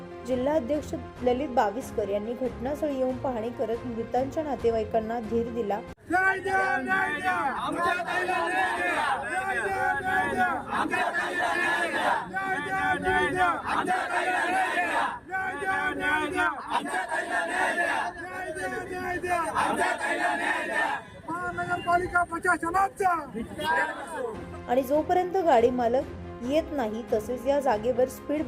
जिल्हाध्यक्ष ललित बाविस्कर यांनी घटनास्थळी येऊन पाहणी करत मृतांच्या नातेवाईकांना धीर दिला। महानगरपालिका प्रशासनाचा आणि जोपर्यंत गाडी मालक येत नाही तसेच या जागेवर स्पीड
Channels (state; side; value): identical; both; correlation 1.00